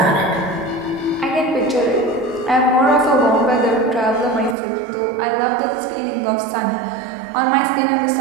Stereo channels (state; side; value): drops out; left; at 4.5 s